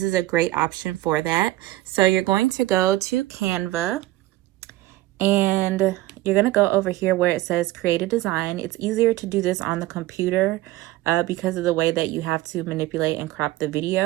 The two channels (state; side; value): quieter; left; 17.0 dB